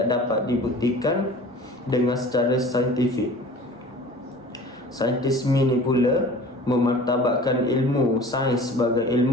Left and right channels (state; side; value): normal; both; correlation 0.43